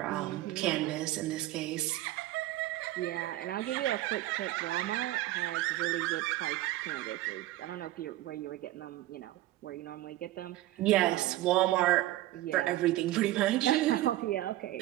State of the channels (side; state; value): left; quieter; 15.9 dB